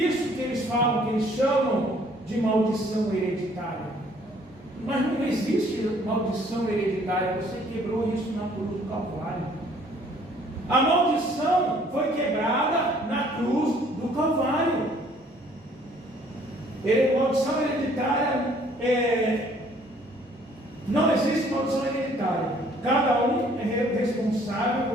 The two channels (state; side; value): normal; both; correlation 0.59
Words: que eles falam, que eles chamam de maldição hereditária. Mas não existe maldição hereditária, você quebrou isso na cruz do Calvário. A maldição foi quebrada na cruz do Calvário. Maldição hereditária não existe maldição hereditária. Cada um é responsável